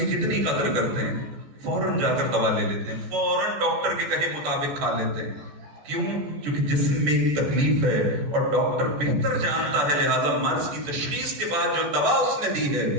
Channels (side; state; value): left; late; 14 ms